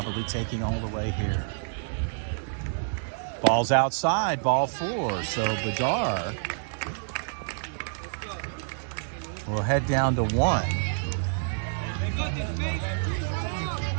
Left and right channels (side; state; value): left; silent; digital silence